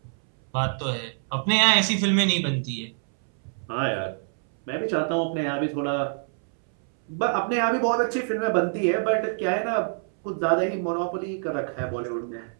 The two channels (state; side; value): silent; left; 61 dB below the other